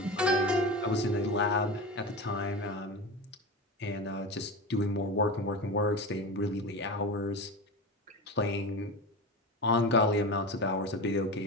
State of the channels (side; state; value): both; normal; correlation 0.26